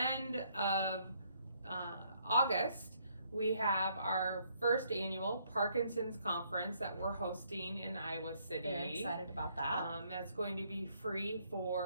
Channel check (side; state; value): both; inverted; correlation -0.69